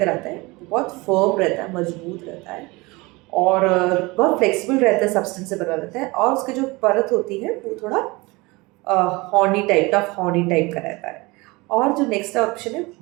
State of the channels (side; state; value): left; quieter; 23.9 dB